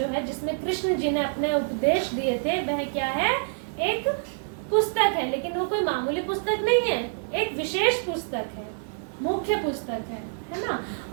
है, जिसमें कृष्ण जी ने अपने उपदेश दिए थे, वह क्या है? एक पुस्तक है, लेकिन वो कोई मामूली पुस्तक नहीं है, एक विशेष पुस्तक है, मुख्य पुस्तक है ना।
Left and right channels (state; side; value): silent; left; 60 dB below the other